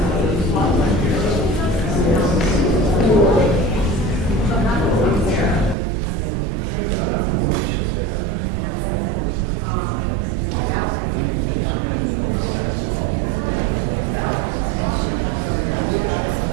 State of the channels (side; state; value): left; drops out; at 5.8 s